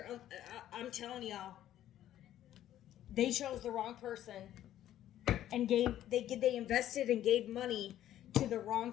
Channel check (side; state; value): right; quieter; 12.2 dB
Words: I'm telling y'all. They chose the wrong person. And they invested and gave money to the wrong